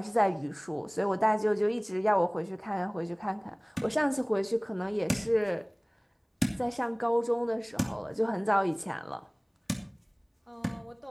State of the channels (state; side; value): identical; both; correlation 1.00